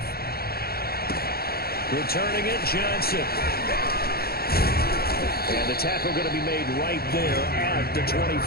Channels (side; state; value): right; late; 0.45 ms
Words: Returning it, Johnson. And the tackle going to be made right there at the